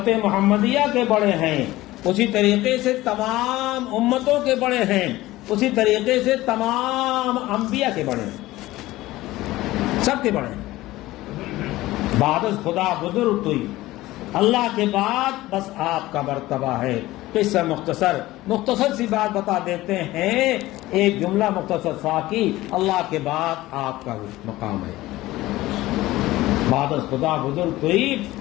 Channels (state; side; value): quieter; right; 17.4 dB